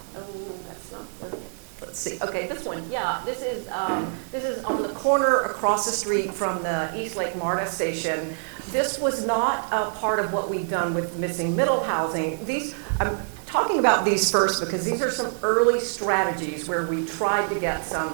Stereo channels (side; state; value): left; silent; 61 dB below the other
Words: let's see. Okay, this one. Yeah, this is on the corner across the street from the East Lake MARTA station. This was not a part of what we've done with missing middle housing. I'm talking about these first because these are some early strategies where we tried to get some